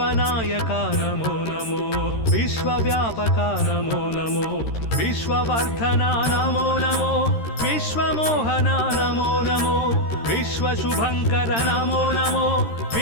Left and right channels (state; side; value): late; right; 13 ms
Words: नमो नमो विश्वव्यापक नमो नमो विश्ववर्धन नमो नमो विश्वमोहन नमो नमो विश्वशुभंकर नमो नमो